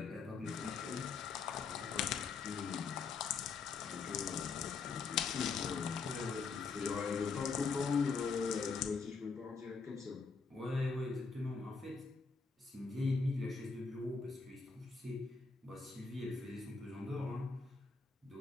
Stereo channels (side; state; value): right; quieter; 4.8 dB